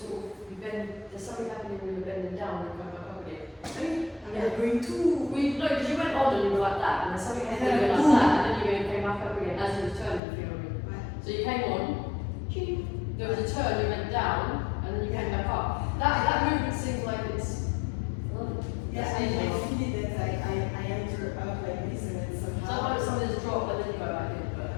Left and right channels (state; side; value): drops out; right; at 10.2 s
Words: of you bend. There's something happening when you're bending down and come back up again. I'm going too. No, because you went on and you were like that, and then something happened and you went like that, and then you came back up again as you were turning. If you know what I mean. Right. So you came on, ching, there was a turn, you went down, and then you came back up. That movement seems like it's. Yeah, I feel it that I enter out like this and then somehow. Sometimes something's dropped, but then you go back in.